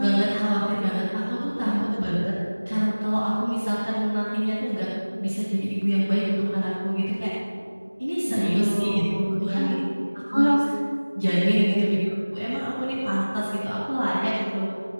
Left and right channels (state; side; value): inverted; both; correlation -1.00